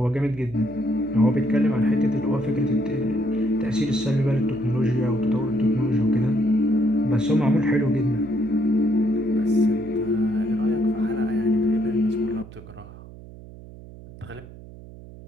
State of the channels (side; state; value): right; noise; hum, 17 dB below the sound